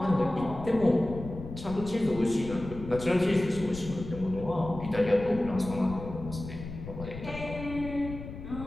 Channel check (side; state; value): left; noise; rumble, 11 dB below the sound